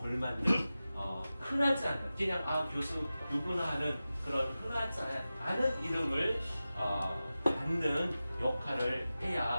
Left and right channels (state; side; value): inverted; both; correlation -0.95